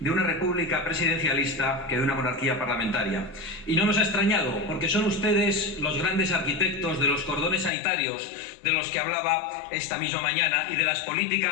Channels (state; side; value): drops out; right; at 7.7 s